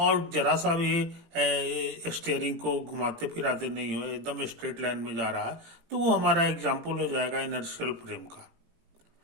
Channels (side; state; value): left; late; 18 ms